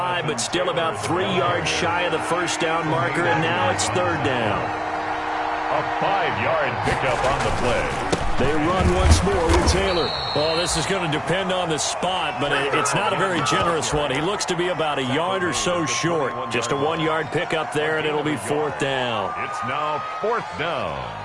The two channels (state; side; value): identical; both; correlation 1.00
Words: but still about 3 yards shy of the first down marker, and now it's third down. A 5-yard pickup on the play. They run once more with Taylor. Oh, this is going to depend on the spot, but it's not a very generous one. He looks to be about a yard or so short. Just a 1-yard pickup there, and it'll be fourth down. It's now fourth down.